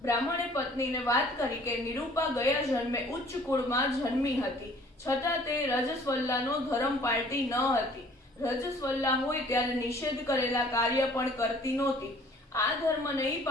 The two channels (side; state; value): both; normal; correlation 0.54